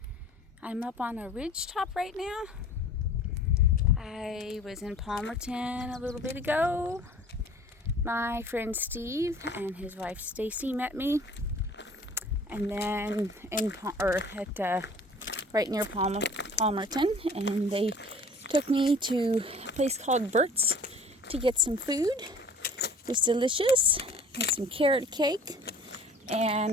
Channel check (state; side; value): normal; both; correlation 0.48